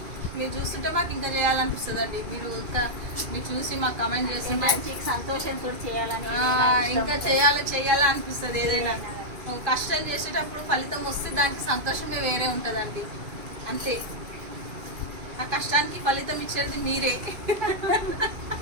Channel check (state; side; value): late; left; 2.5 ms